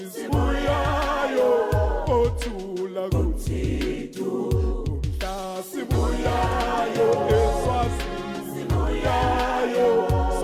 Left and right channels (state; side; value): identical; both; correlation 1.00